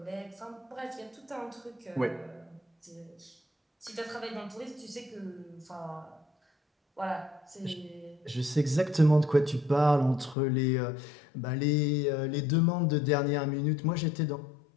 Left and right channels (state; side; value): drops out; right; at 10.4 s